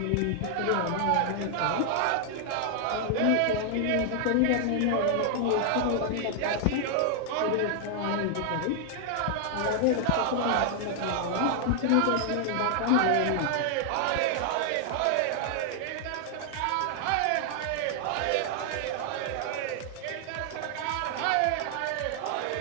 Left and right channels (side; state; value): both; different; correlation 0.00